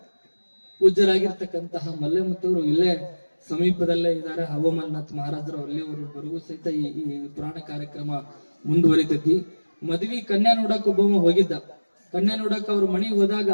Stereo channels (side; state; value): both; inverted; correlation -1.00